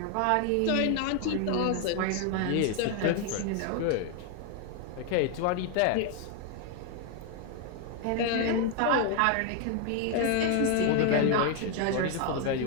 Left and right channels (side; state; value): both; different; correlation 0.00